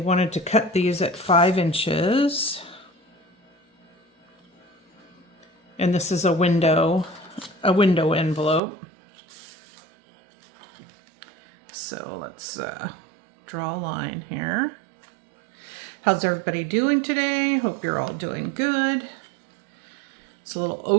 to cut these at 5 inches, and this is a window envelope. So let's draw a line here. How's everybody doing today? Hope you're all doing good. It's a little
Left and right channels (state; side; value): drops out; left; at 8.6 s